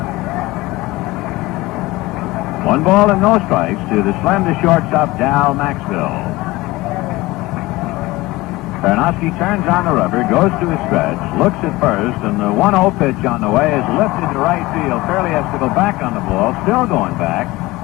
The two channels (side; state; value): right; quieter; 20.0 dB